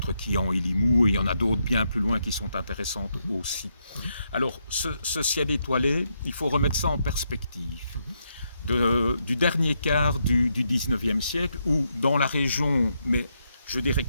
Quillan et Limoux, et il y en a d'autres bien plus loin qui sont intéressantes aussi. Alors, ce ciel étoilé, il faut remettre ça en perspective. Du dernier quart du 19e siècle, où dans la région, mais je dirais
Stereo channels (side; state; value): both; inverted; correlation -0.79